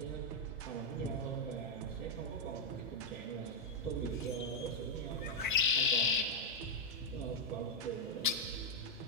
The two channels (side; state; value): both; normal; correlation -0.02